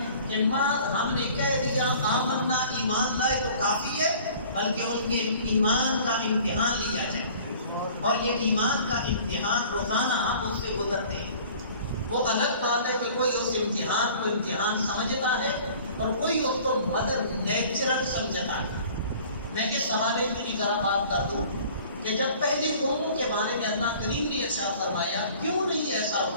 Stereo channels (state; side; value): inverted; both; correlation -0.49